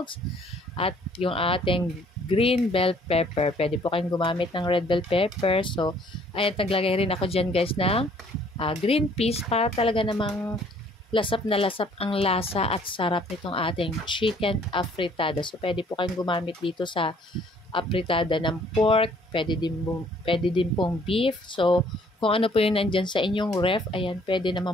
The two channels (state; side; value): normal; both; correlation 0.60